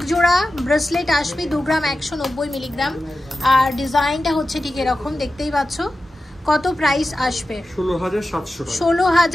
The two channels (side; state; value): both; normal; correlation 0.93